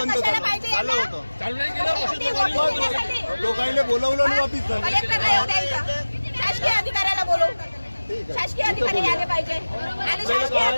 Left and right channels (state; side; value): inverted; both; correlation -1.00